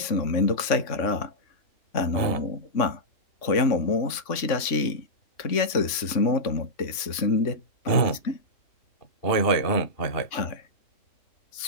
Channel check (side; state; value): right; late; 3.5 ms